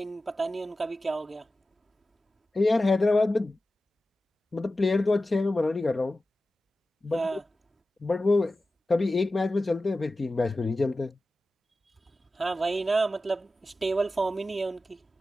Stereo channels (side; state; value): both; normal; correlation 0.94